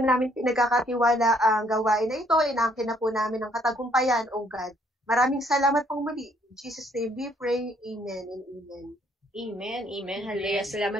namin pinagkakatiwala ang gawain na ito, inaangkin na po namin ang katagumpayan, O God. Maraming salamat pong muli. In Jesus' name we pray. Amen and amen. Amen, amen. Hallelujah.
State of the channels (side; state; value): both; normal; correlation 0.66